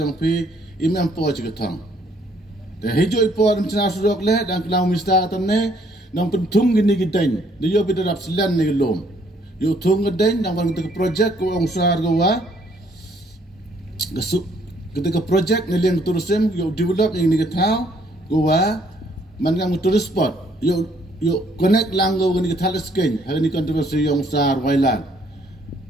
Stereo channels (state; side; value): normal; both; correlation 0.65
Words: pi, imam po ciketang. Te hijau ipor mencina surak le dan kelau mista atane. Nang pentung gini gideng, dia bida dap selan ni gelom. Yo tung gideng, nang bang kita projek ko ang sar gawa. Ketika projek ni liang tourism, yo develop yang ni ketau, gawa, mangang tourist spot. Yo connect lang gawa gini ketau skin, hari ni kontroversi yang sar wailan.